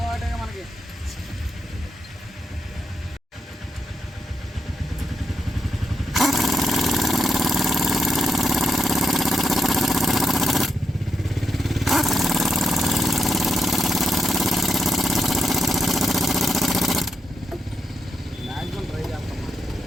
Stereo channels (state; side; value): normal; both; correlation 0.85